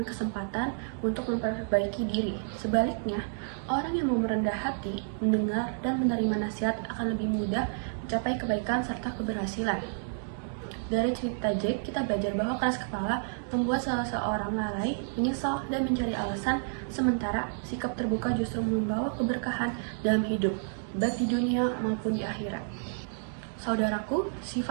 kesempatan untuk memperbaiki diri. Sebaliknya, orang yang mau merendah hati, mendengar, dan menerima nasihat akan lebih mudah mencapai kebaikan serta keberhasilan. Dari cerita Jack, kita belajar bahwa keras kepala membuat salah seorang lalai, menyesal, dan mencari alasan, sementara sikap terbuka justru membawa keberkahan dalam hidup, baik di dunia maupun di akhirat. Saudaraku,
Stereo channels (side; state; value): left; silent; digital silence